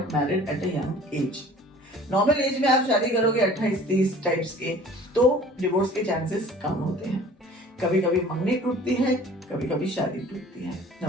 married at a young age. Normal age में आप शादी करोगे 28-30 टाइप्स के तो डिवोर्स के चांसेस कम होते हैं। कभी कभी मंगनी टूटती है, कभी कभी शादी टूटती है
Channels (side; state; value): both; normal; correlation 0.47